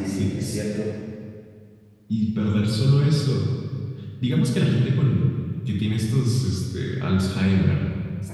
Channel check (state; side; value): identical; both; correlation 1.00